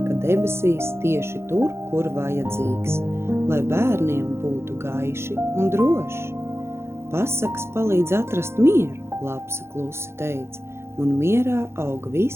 debesīs tieši tur, kur vajadzīgs, lai bērniem būtu gaiši un droši. Pasakas palīdz atrast mieru, lapsa klusi teica, un mierā aug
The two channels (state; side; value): late; left; 0.12 ms